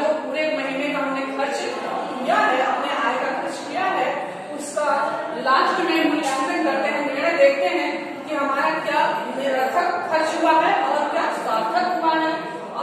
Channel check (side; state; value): both; identical; correlation 1.00